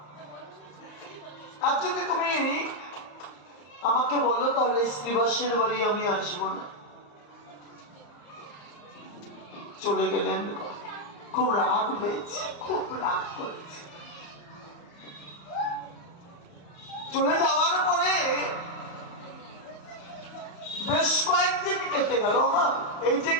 আর যদি তুমি আমাকে বলো, তাহলে শ্রীবাসের বাড়ি আমি আসবো না। চলে গেলেন। খুব রাগ হয়েছে, খুব রাগ করেছে। চলে যাওয়ার পরে বেশ কয়েকদিন কেটে গেল। মা, এই যে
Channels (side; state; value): right; late; 34 ms